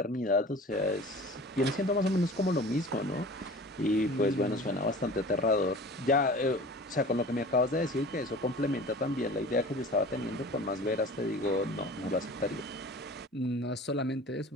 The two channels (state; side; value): normal; both; correlation 0.40